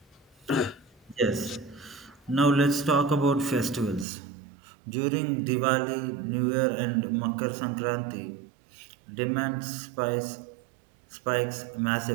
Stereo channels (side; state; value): left; drops out; at 4.0 s